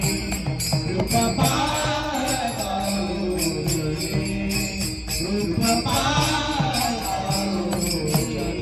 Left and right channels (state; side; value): identical; both; correlation 1.00